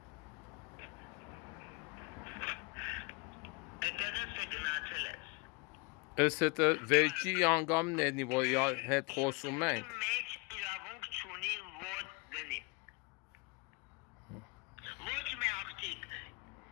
Ես հետը վերջի անգամն էնի, որ հետ խոսում ենք։ Մեջ իրավունք չունի ոտ դնի։ Ոչ մի աղջիկ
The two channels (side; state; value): right; quieter; 29.3 dB